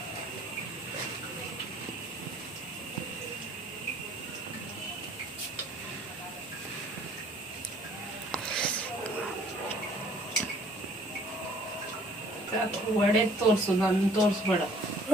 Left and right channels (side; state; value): both; normal; correlation 0.57